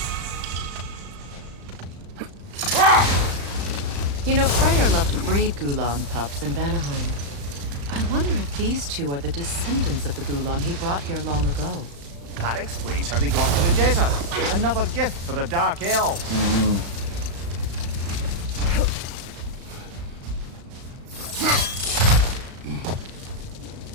You know, Freyr loved to breed Gulan pups in Vanaheim. I wonder if these two are the descendants of the Gulan he brought here long ago. That explains how they got to the desert. Another gift for the Dark Elves.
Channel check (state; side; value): late; left; 35 ms